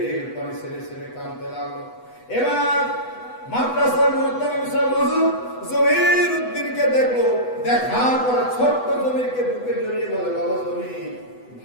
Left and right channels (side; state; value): right; late; 8.0 ms